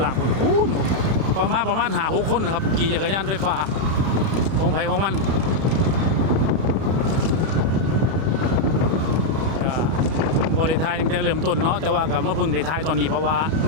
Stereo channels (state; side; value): late; left; 31 ms